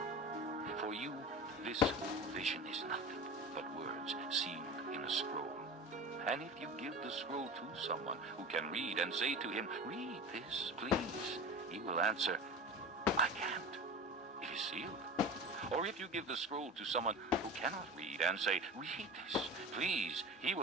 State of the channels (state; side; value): normal; both; correlation 0.33